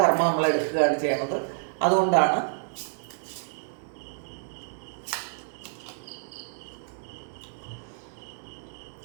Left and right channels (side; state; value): left; silent; 59 dB below the other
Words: നമ്മൾ എടുക്കുകയാണ് ചെയ്യുന്നത്. അതുകൊണ്ടാണ്